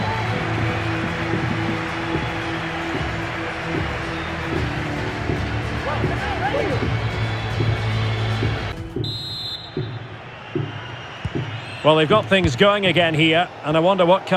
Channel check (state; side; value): identical; both; correlation 1.00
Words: Well, they've got things going again here, and I wonder what